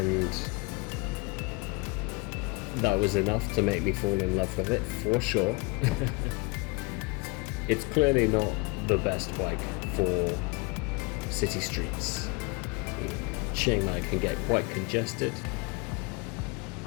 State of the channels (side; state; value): right; quieter; 28.2 dB